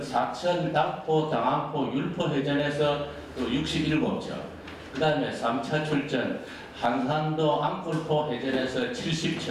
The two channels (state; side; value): identical; both; correlation 1.00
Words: 사천, 당포, 당안포, 율포 해전에서 또 67척 그 다음에 3차 출전 한산도, 앙콜포 해전에서